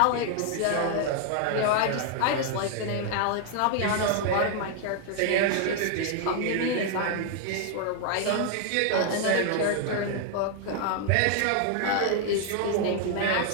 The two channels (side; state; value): both; different; correlation 0.00